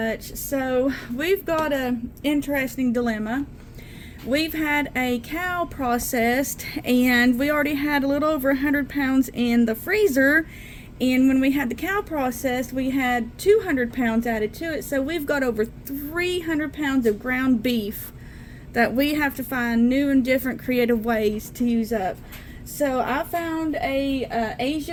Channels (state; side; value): identical; both; correlation 1.00